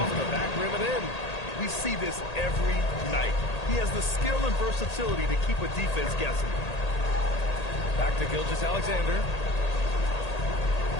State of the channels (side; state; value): right; late; 1.8 ms